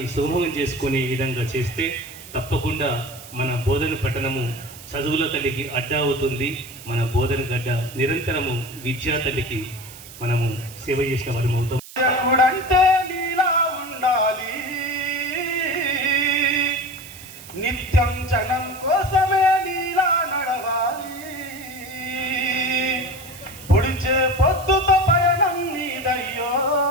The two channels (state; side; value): noise; right; hiss, 17 dB below the sound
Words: సుగమం చేసుకునే విధంగా చేస్తే తప్పకుండా మన బోధన పట్టణము చదువుల తల్లికి అడ్డా అవుతుంది. మన బోధన గడ్డ నిరంతరము విద్యా తల్లికి మనము సేవ చేసిన వారు అవుతాం. అంటే నీలా ఉండాలి, నిత్యం జనం కోసమే నీలా నడవాలి, పొడిచే పొద్దుతో పయనం నీదయ్యో,